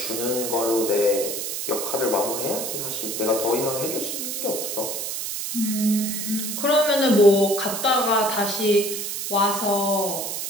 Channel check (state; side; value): noise; right; hiss, 4 dB below the sound